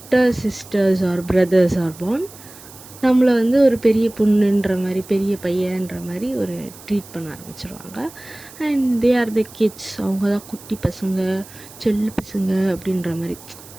sisters or brothers or born, நம்மளை வந்து ஒரு பெரிய பொண்ணுன்ற மாதிரி, பெரிய பையன்ற மாதிரி ஒரு ட்ரீட் பண்ண ஆரம்பிச்சிருவாங்க. And they are the kids, அவங்க தான் குட்டி பசங்க, செல்ல பசங்க அப்படின்ற மாதிரி.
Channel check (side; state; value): right; noise; hiss, 19 dB below the sound